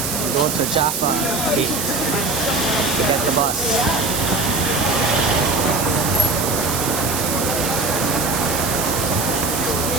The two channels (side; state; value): right; noise; hiss, 2 dB below the sound